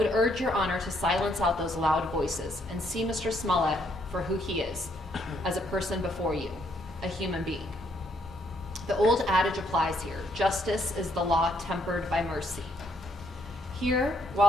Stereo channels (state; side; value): normal; both; correlation 0.71